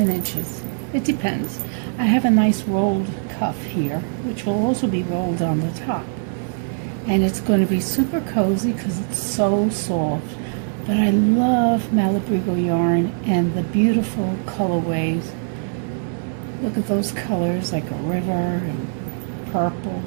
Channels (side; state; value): left; silent; 57 dB below the other